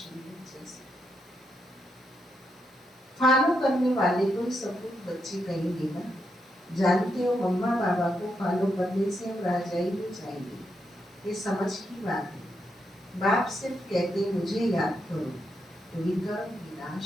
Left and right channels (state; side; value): normal; both; correlation 0.81